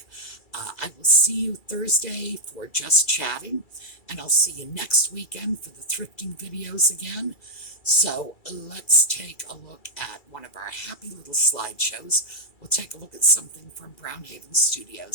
I will see you Thursday for Just Chatting, and I'll see you next weekend for the thrifting videos again. So let's take a look at one of our happy little slideshows. We'll take a look at something from Brownhaven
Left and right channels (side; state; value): right; late; 2.3 ms